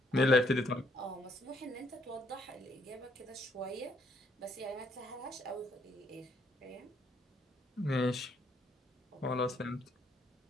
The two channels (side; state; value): both; normal; correlation 0.69